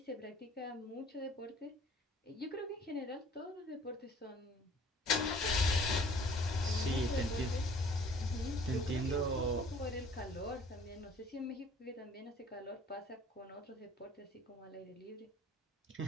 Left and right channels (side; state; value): both; normal; correlation 0.54